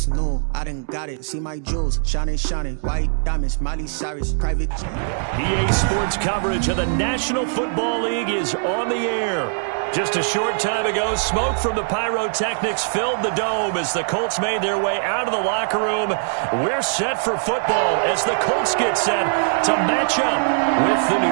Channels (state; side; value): silent; left; digital silence